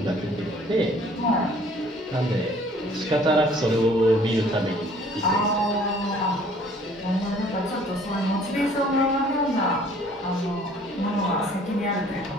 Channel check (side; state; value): both; normal; correlation 0.55